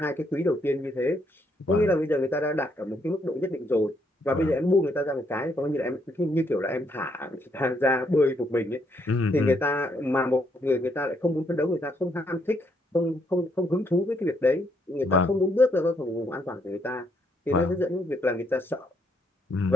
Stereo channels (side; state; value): both; normal; correlation 0.73